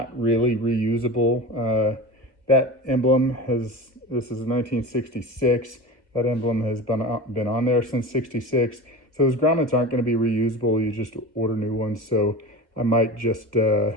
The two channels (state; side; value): late; left; 1.7 ms